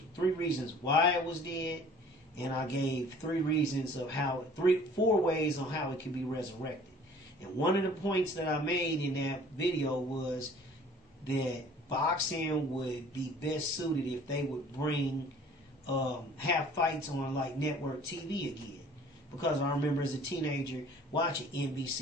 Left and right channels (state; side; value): normal; both; correlation 0.51